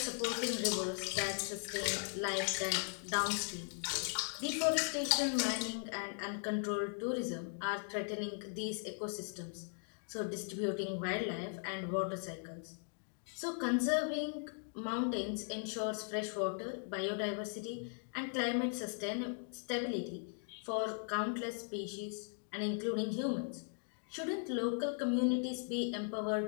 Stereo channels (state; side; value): silent; right; 52 dB below the other